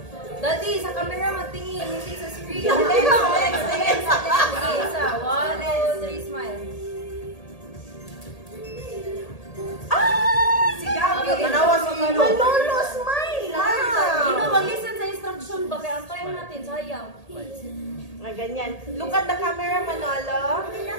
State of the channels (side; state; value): right; late; 1.8 ms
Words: Daddy, sa camera magtingin. Hindi sa screen. Tingin sa... Okay, isa. 1, 2, 3, smile. Manawas Manolo, smile! Mag-listen sa instruction ba? Kaya antayin natin, sayang. Ganyan. Look at the camera, Manolo.